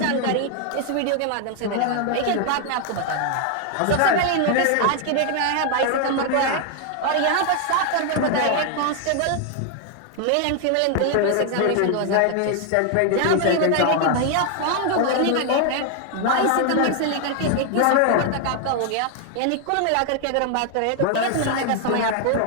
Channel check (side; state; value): both; different; correlation 0.00